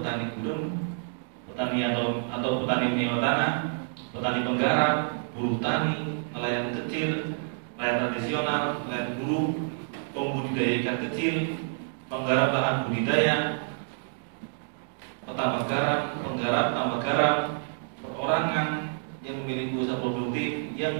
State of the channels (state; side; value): silent; left; digital silence